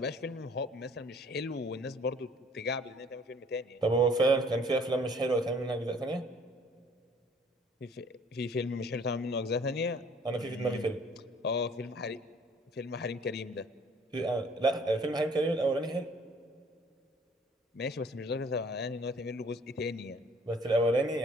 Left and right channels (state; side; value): normal; both; correlation 0.55